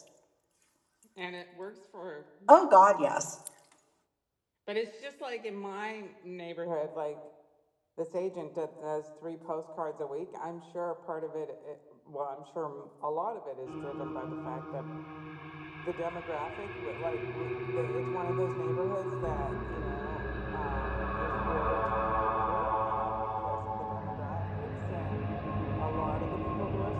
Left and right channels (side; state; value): both; identical; correlation 1.00